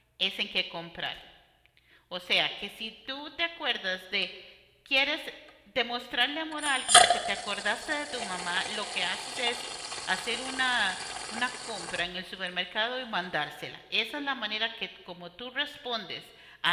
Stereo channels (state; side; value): identical; both; correlation 1.00